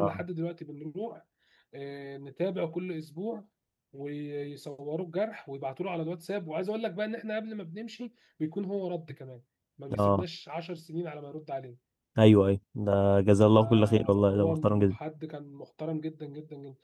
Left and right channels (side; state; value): both; identical; correlation 1.00